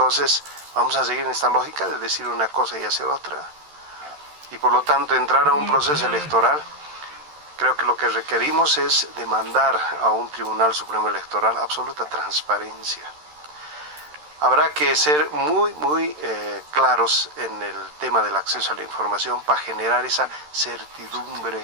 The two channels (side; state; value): left; late; 13 ms